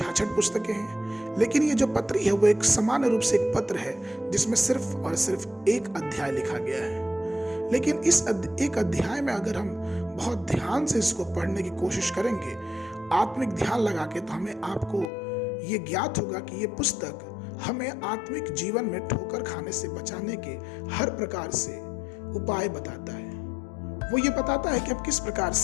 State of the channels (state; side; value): drops out; right; at 15.1 s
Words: पुस्तकें हैं, लेकिन ये जो पत्री है वो एक सामान्य रूप से एक पत्र है जिसमें सिर्फ और सिर्फ एक अध्याय लिखा गया है। लेकिन इस एक अध्याय में अगर हम बहुत ध्यान से इसको पढ़ने की कोशिश करेंगे, आत्मिक ध्यान लगा के, तो हमें आपको ये ज्ञात होगा कि ये पुस्तक हमें आत्मिक जीवन में ठोकर खाने से बचाने के हर प्रकार से उपाय बताता है। वो ये बताता है कि आप किस प्रकार